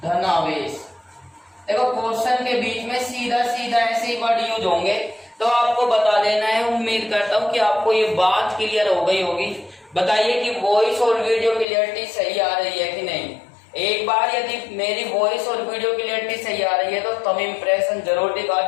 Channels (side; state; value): right; drops out; at 11.7 s